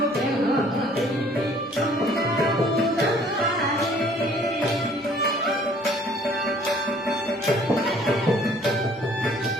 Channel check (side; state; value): both; normal; correlation 0.57